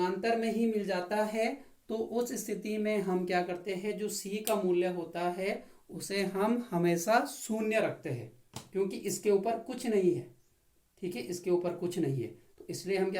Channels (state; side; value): identical; both; correlation 1.00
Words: में ही मिल जाता है, तो उस स्थिति में हम क्या करते हैं, जो C का मूल्य होता है उसे हम हमेशा शून्य रखते हैं, क्योंकि इसके ऊपर कुछ नहीं है। ठीक है, इसके ऊपर कुछ नहीं है, तो इसलिए हम